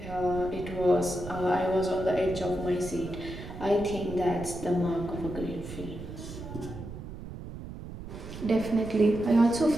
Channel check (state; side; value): noise; right; rumble, 11 dB below the sound